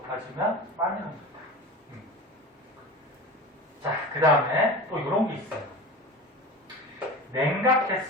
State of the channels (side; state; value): both; normal; correlation 0.31